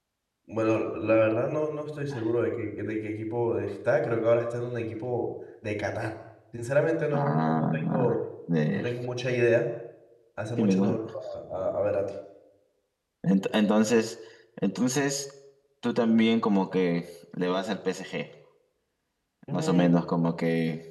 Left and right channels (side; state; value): both; identical; correlation 1.00